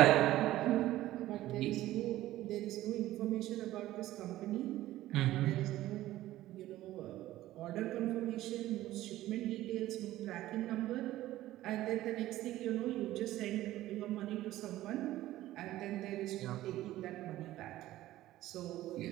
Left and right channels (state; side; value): quieter; left; 15.1 dB